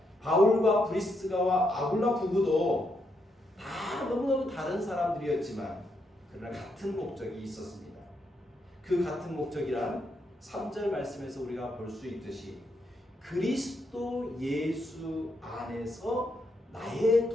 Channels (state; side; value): normal; both; correlation 0.79